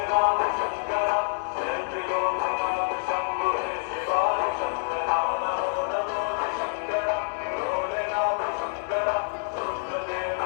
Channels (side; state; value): right; silent; digital silence